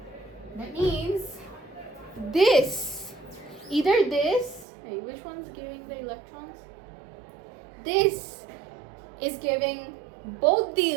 That means this, either this, hey, which one's giving the electrons? This is giving both the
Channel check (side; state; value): left; drops out; at 4.7 s